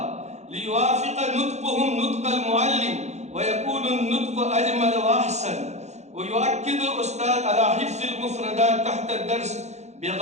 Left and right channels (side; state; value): left; late; 0.33 ms